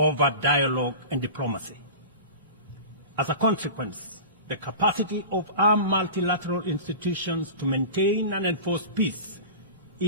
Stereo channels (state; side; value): inverted; both; correlation -0.33